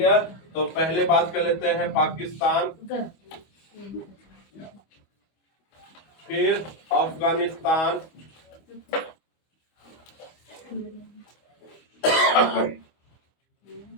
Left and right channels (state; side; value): late; right; 25 ms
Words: तो पहले बात कर लेते हैं पाकिस्तान, फिर अफगानिस्तान,